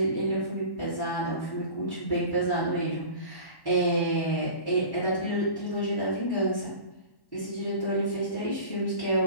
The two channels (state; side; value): late; right; 1.1 ms